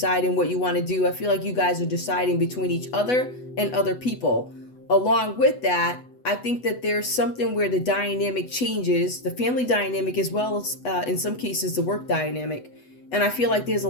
what you want to do. I feel like you guys are deciding between each other and other people. Along with that, I think that there's something where the dynamic changes, the family dynamic as well as in some cases the work dynamic. And I feel like there's a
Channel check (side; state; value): right; late; 8.1 ms